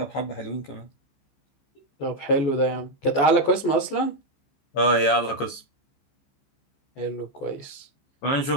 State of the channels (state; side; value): late; right; 14 ms